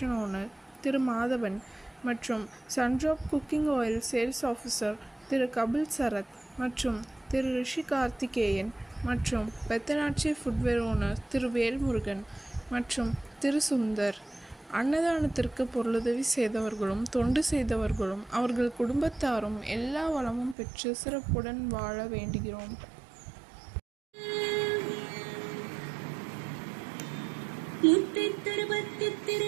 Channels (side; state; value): left; drops out; at 20.6 s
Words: ஓனர் திரு மாதவன் மற்றும் Sundrop cooking oil sales officer Thiru Kapil Sarath மற்றும் திரு ரிஷி கார்த்திகேயன் மற்றும் பெத்தனாட்சி ஃபுட்வேர் ஓனர் திரு வேல்முருகன் மற்றும் திரு சுந்தர். அன்னதானத்திற்கு பொருளுதவி செய்தவர்களும் தொண்டு செய்தவர்களும் அவர்கள் குடும்பத்தாரும் எல்லா வளமும் பெற்று சிறப்புடன் வாழ வேண்டுகிறோம். முத்தை தருவத்தி